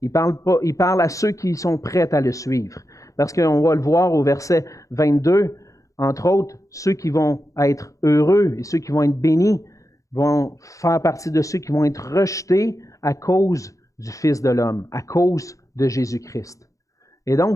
Il parle à ceux qui sont prêts à le suivre. Parce qu'on va le voir au verset 22, entre autres, ceux qui vont être heureux et ceux qui vont être bénis vont faire partie de ceux qui vont être rejetés à cause du Fils de l'homme, à cause de Jésus-Christ. Et donc,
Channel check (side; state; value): right; late; 0.16 ms